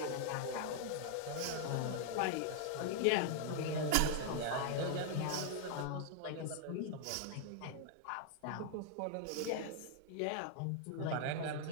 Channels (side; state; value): both; different; correlation 0.00